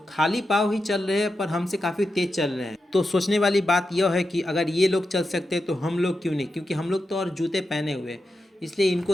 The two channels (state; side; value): normal; both; correlation 0.89